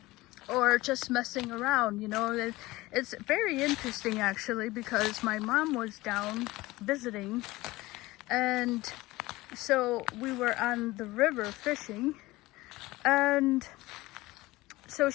Or just messing around, you know. It's very interesting actually, because my mom was down visiting, and so we were on the river fishing, and so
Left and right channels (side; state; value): right; quieter; 19.5 dB